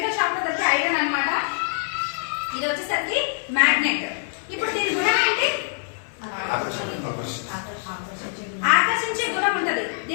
షాప్ లో దొరికే ఐరన్ అన్నమాట. ఇది వచ్చేసరికి మ్యాగ్నెట్. ఇప్పుడు దీని గుణం ఏంటి? ఆకర్షించే గుణం ఉంటది.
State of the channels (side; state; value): right; silent; 59 dB below the other